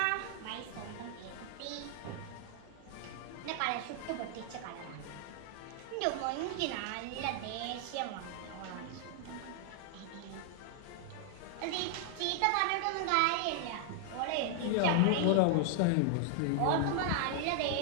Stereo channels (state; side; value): different; both; correlation 0.00